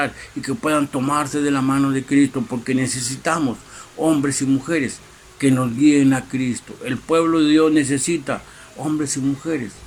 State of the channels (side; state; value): both; identical; correlation 1.00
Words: y que puedan tomarse de la mano de Cristo, porque necesitamos hombres y mujeres que nos guíen a Cristo. El pueblo de Dios necesita hombres y mujeres